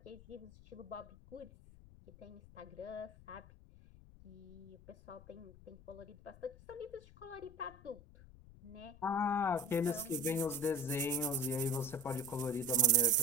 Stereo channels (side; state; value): left; noise; rumble, 20 dB below the sound